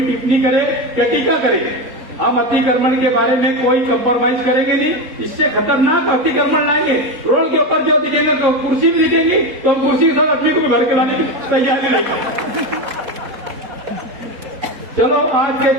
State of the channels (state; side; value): late; left; 4.1 ms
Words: टिप्पणी करे क्या टीका करेंगे, हम अतिक्रमण के बारे में कोई कंप्रोमाइज करेंगे नहीं। इससे खतरनाक अतिक्रमण लाएंगे। रोड के ऊपर जो दिखेगा तो कुर्सी भी दिखेगी तो हम कुर्सी के साथ अपनी को भी भर के लाने की तैयारी रहेगी। चलो आज के